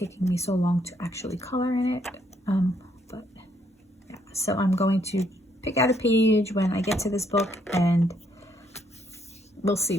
me so long to actually color in it, but yeah. So I'm going to pick out a page when I get to this book, and we'll see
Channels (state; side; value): normal; both; correlation 0.71